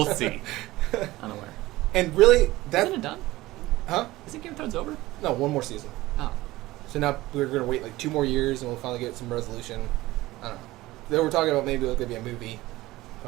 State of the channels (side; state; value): left; quieter; 18.2 dB